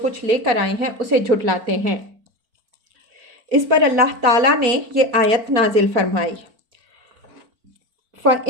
کچھ لے کر آئے ہیں اسے جھٹلاتے ہیں۔ اس پر اللہ تعالیٰ نے یہ آیت نازل فرمائی،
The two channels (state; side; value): late; left; 4.4 ms